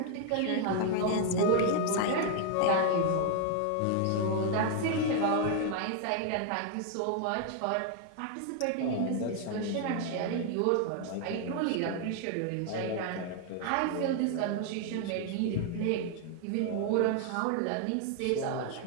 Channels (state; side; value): different; both; correlation 0.00